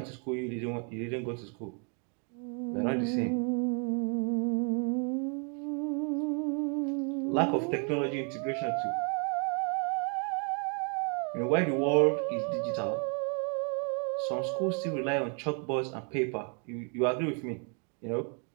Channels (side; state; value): left; quieter; 38.9 dB